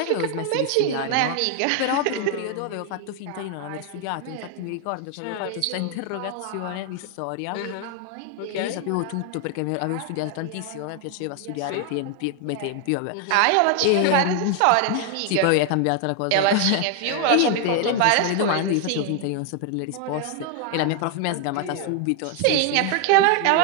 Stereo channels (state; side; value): different; both; correlation 0.00